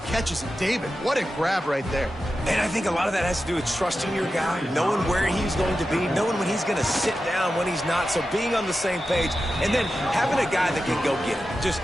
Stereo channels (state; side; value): normal; both; correlation 0.92